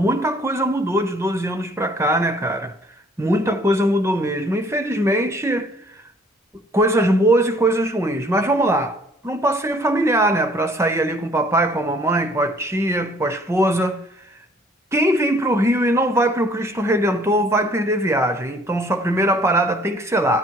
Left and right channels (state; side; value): normal; both; correlation 0.58